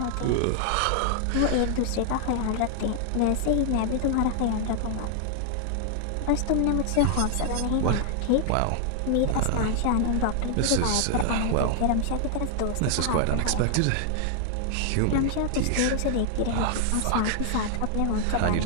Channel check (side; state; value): both; different; correlation 0.00